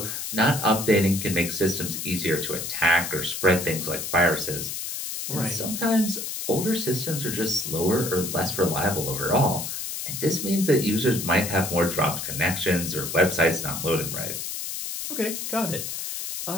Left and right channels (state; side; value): noise; left; hiss, 5 dB below the sound